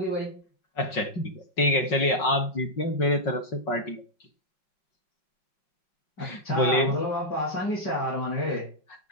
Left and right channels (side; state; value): right; late; 5.5 ms